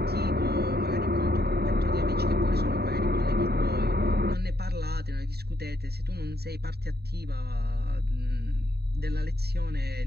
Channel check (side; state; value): left; late; 0.47 ms